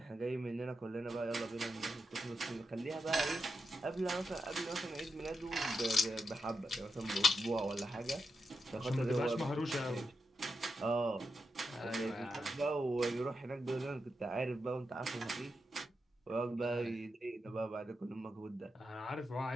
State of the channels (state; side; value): normal; both; correlation 0.87